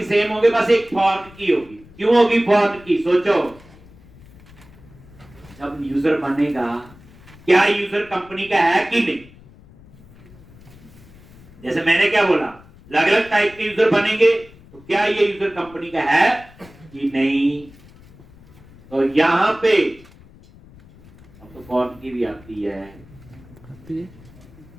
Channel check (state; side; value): noise; left; rumble, 23 dB below the sound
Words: सेम होंगे, बस एक फॉर्म की होगी। क्यों होगी फॉर्म की? सोचो, जब यूजर बनेगा क्या यूजर कंपनी का है कि नहीं? जैसे मैंने क्या बोला, अलग अलग टाइप के यूजर बनेंगे तो क्या ये यूजर कंपनी का है कि नहीं? तो यहां पे अब तो फॉर्म की भी आती है,